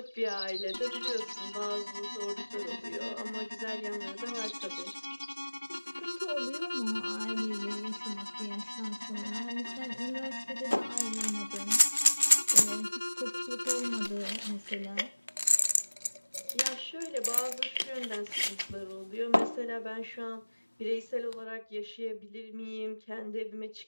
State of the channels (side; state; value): both; inverted; correlation -1.00